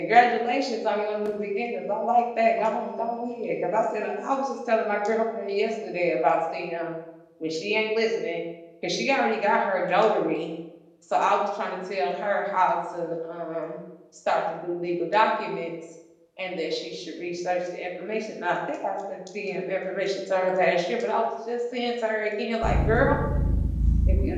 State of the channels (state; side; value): identical; both; correlation 1.00